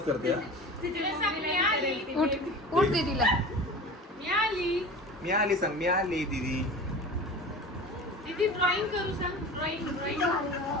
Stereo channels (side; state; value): both; normal; correlation 0.35